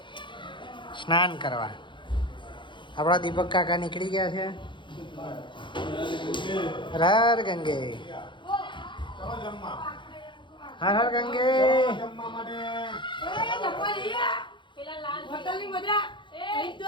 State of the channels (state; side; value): late; right; 0.23 ms